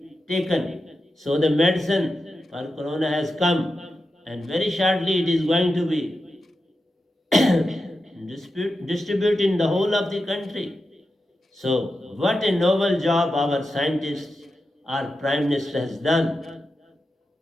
taken. So, the medicine for corona has come, and very shortly it is going to be distributed in the whole of the country. So, what a noble job our scientists, our Prime Minister has done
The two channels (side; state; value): both; normal; correlation 0.90